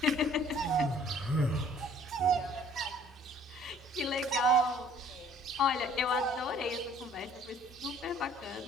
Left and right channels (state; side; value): normal; both; correlation 0.55